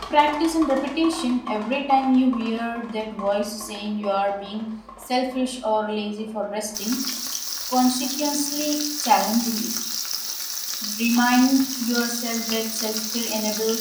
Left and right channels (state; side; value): identical; both; correlation 1.00